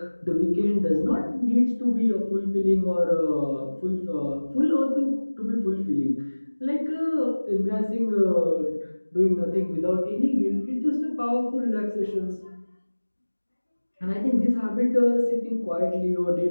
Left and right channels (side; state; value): both; inverted; correlation -1.00